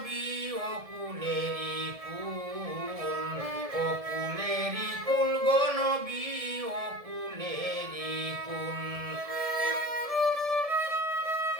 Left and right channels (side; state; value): left; late; 1.7 ms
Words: অকুলেরি কুল অকুলেরি কুল গো নবী অকুলেরি কুল